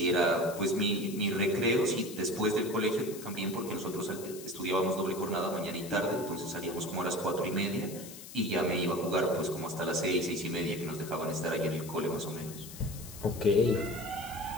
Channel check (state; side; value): noise; left; hiss, 14 dB below the sound